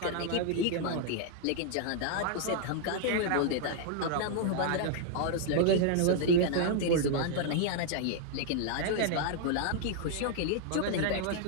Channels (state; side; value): different; both; correlation -0.01